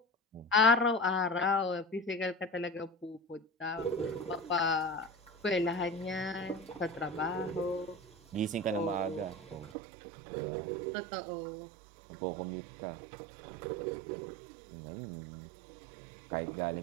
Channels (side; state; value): left; drops out; at 9.7 s